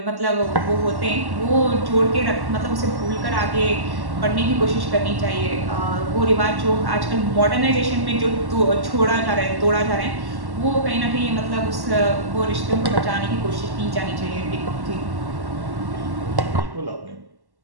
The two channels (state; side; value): late; left; 1.1 ms